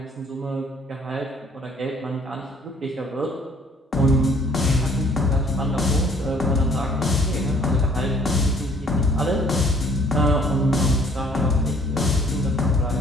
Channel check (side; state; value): both; normal; correlation 0.58